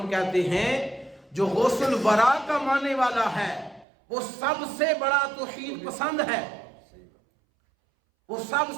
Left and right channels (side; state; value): left; drops out; at 3.9 s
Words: کہتے ہیں جو غوث الورا کا ماننے والا ہے وہ سب سے بڑا توحید پسند ہے، وہ سب